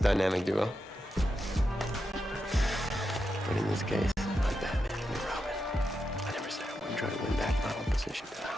duo. But in this case, I'm Batman and you're Robin. I never said I wouldn't try to win back my own position.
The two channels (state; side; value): normal; both; correlation 0.87